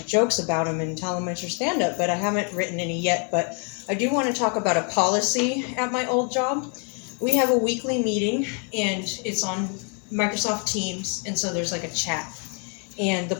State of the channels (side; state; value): right; quieter; 39.7 dB